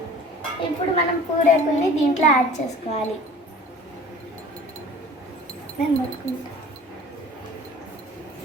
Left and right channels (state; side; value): normal; both; correlation 0.45